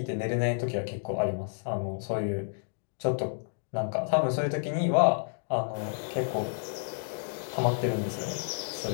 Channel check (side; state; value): right; silent; digital silence